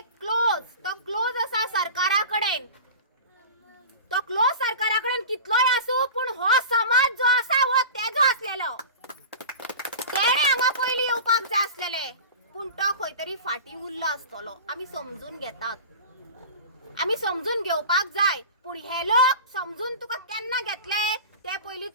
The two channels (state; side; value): inverted; both; correlation -0.34